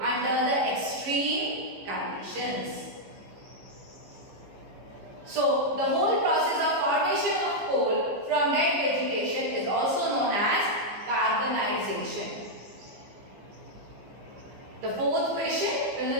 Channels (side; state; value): left; late; 15 ms